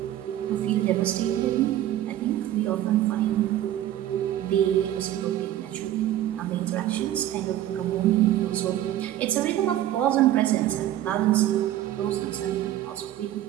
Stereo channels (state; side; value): quieter; left; 12.8 dB